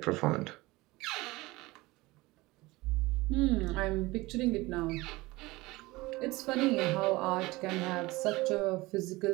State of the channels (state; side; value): quieter; left; 21.1 dB